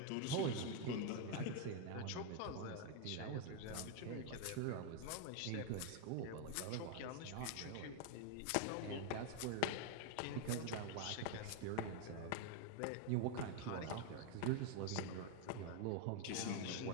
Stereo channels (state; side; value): different; both; correlation 0.01